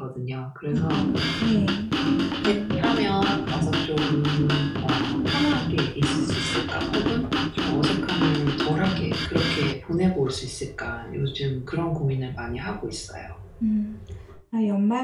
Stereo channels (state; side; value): identical; both; correlation 1.00